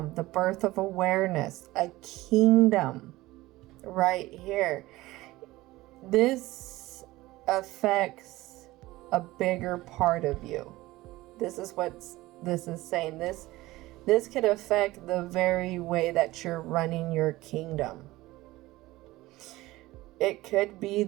the birth of awareness, a kingdom right here. This affects a bigger part of you. This is what this is saying. This could affect the very way that you're running your kingdom. It could be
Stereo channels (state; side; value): quieter; left; 18.4 dB